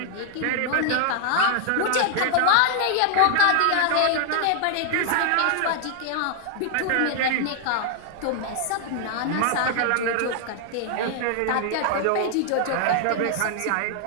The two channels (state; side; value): different; both; correlation 0.00